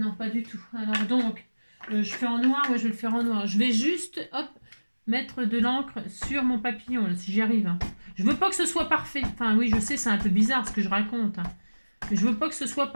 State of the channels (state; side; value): inverted; both; correlation -1.00